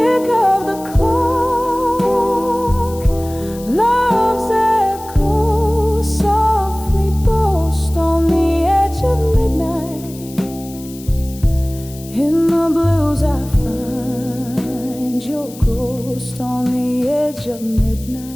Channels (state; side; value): noise; left; hiss, 18 dB below the sound